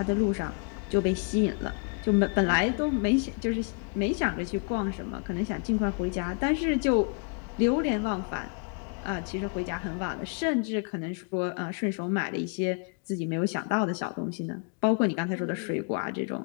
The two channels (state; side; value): quieter; right; 39.7 dB